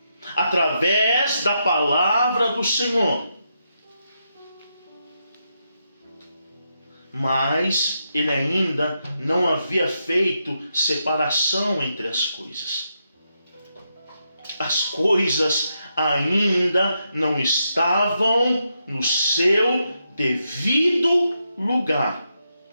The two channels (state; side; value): inverted; both; correlation -0.83